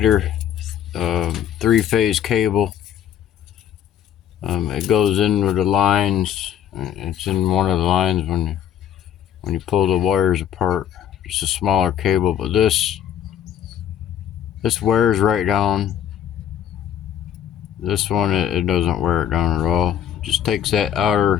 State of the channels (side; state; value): right; quieter; 9.7 dB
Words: 3-phase cable. It goes in with the lines. It's in one of the lines when you pull the wires apart. It's a smaller cable, but this wears right down. This one, it doesn't wear it down at all. It just takes that